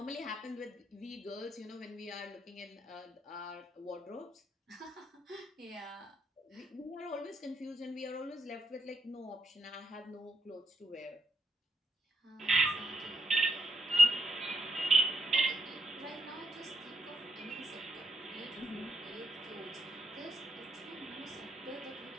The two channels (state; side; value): normal; both; correlation 0.76